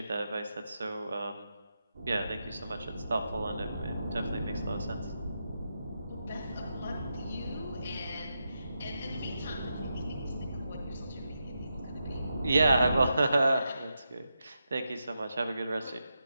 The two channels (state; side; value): inverted; both; correlation -0.86